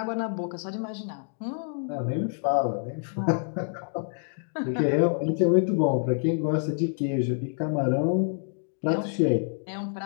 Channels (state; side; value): silent; right; digital silence